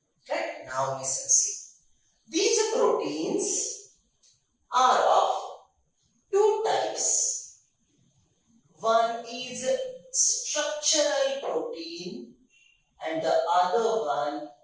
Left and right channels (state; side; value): identical; both; correlation 1.00